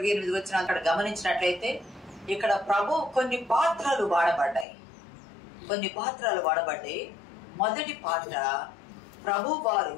వచ్చిన అక్కడ గమనించినట్లయితే ఇక్కడ ప్రభు కొన్ని పాత్రలు వాడబడ్డాయి. మొదటి పాత్ర ప్రభు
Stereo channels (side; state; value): right; drops out; at 4.7 s